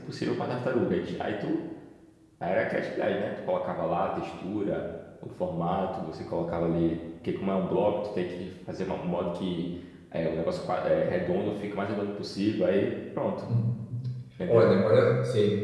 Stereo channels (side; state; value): both; identical; correlation 1.00